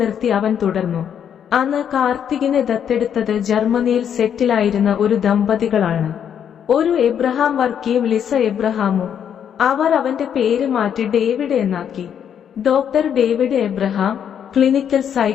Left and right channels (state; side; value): quieter; right; 8.6 dB